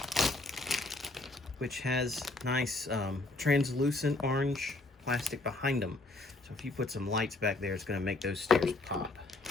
Which has nice translucent orange plastic behind them. So if you put some lights back there, it's going to make those stairs pop.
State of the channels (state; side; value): quieter; right; 3.1 dB